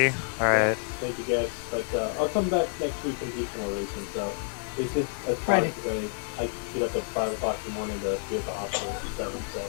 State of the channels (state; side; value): silent; right; 59 dB below the other